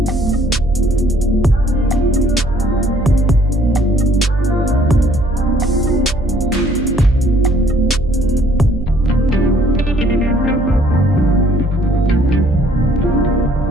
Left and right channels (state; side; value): noise; right; hum, 6 dB below the sound